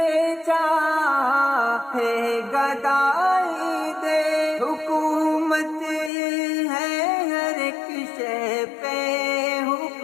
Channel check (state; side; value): drops out; right; at 6.1 s